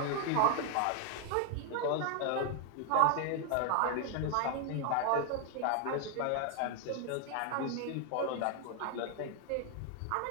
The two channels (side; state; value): both; different; correlation 0.01